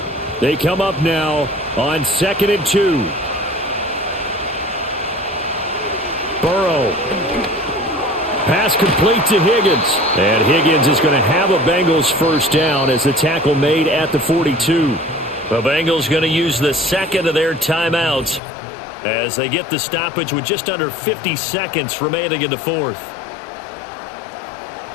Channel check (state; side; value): drops out; right; at 18.4 s